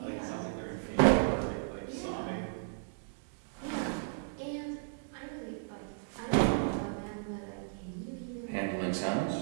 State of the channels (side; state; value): left; silent; digital silence